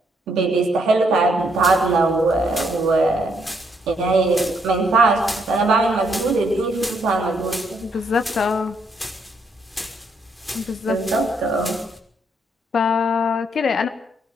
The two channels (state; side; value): normal; both; correlation 0.74